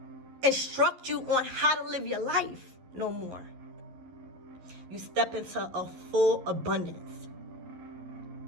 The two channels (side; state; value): left; late; 11 ms